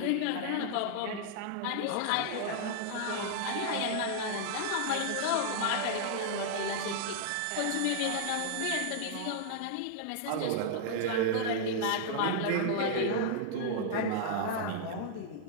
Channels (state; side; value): different; both; correlation -0.01